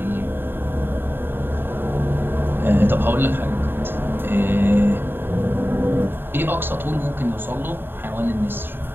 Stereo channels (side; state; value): left; late; 0.10 ms